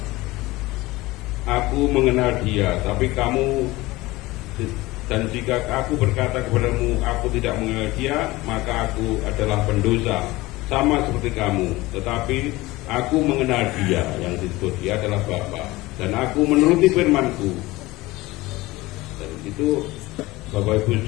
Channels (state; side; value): quieter; right; 19.9 dB